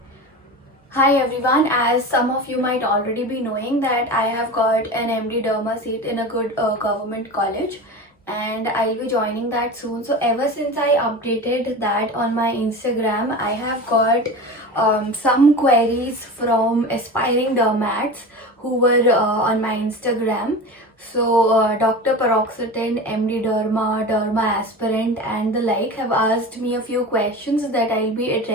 Hi everyone, as some of you might already be knowing that I have got an MD Derma seat in a good government college, and I'll be joining that soon. So ever since I updated that on my Instagram, I have got some queries from aspiring dermats who were on my Instagram. So Dr. Paroxetine, MD Derma, Derma Aspirant and the like have asked me a few questions that I'll be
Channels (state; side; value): normal; both; correlation 0.30